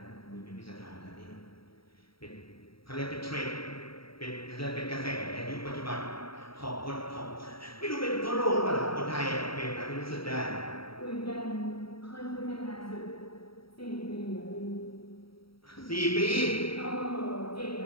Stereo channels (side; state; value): right; late; 0.75 ms